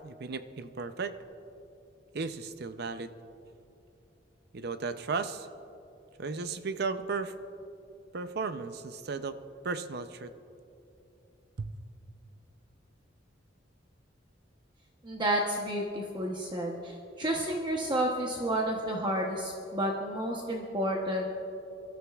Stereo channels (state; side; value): normal; both; correlation 0.21